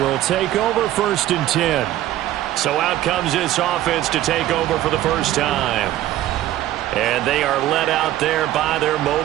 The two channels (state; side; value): quieter; left; 13.9 dB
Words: take over 1st and 10. So out comes this offense to take over for the first time. And they are led out there by their